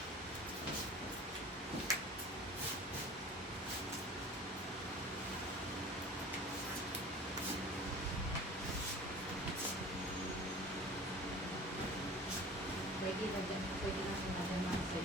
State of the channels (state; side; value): normal; both; correlation 0.41